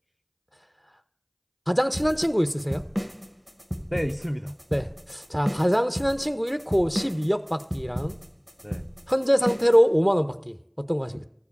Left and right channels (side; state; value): both; identical; correlation 1.00